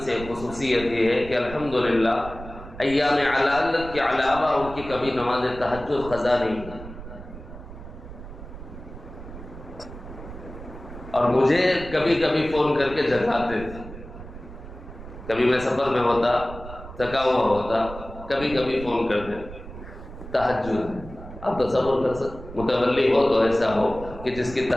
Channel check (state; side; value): noise; right; rumble, 14 dB below the sound